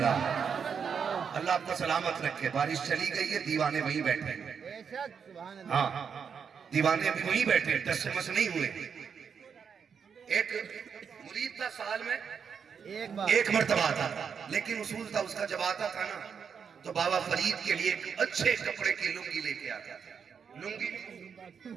اللہ آپ کو سلامت رکھے. بارش چلی گئی ہے, دیوانے وہیں بیٹھے ہیں. بے شک, سبحان اللہ. ہاں دیوانے بھی وہیں بیٹھے ہیں, ٹس سے مس نہیں ہوئے. ایک مرید تھا سال میں ایک بار ایک مرتبہ آتا, لیکن اصول تھا اس کا جب آتا تھا نا تو بابا فرید کے لیے ایک اچھے کپڑے کی لنگی لے کے آتا تھا. لنگی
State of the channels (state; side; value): quieter; left; 6.7 dB